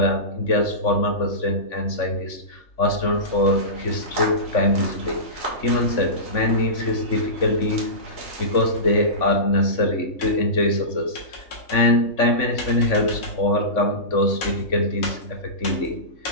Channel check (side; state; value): right; late; 3.5 ms